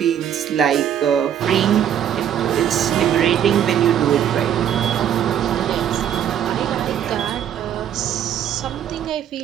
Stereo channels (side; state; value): left; quieter; 9.7 dB